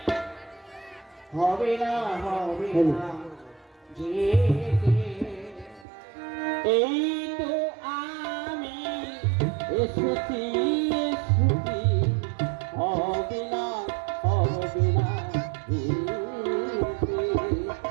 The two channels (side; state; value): left; drops out; at 5.9 s